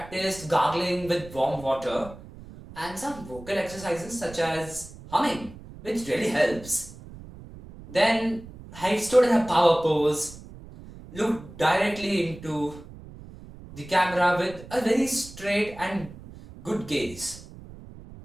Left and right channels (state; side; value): noise; right; rumble, 16 dB below the sound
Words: gargling with warm water and some vocal exercises such as humming, which really helps. Then I stood in a power pose, looked directly into the camera with a very straight and good gaze.